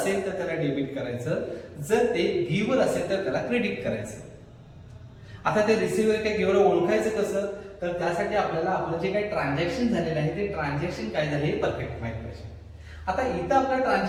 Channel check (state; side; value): identical; both; correlation 1.00